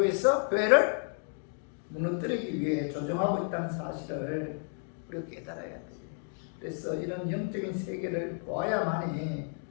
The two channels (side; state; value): right; silent; 57 dB below the other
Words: 교회를 무너뜨리기 위해 조종하고 있다는 사실을 우리가 깨달아야 돼요. 그래서 이런 영적인 세계를 보아야만이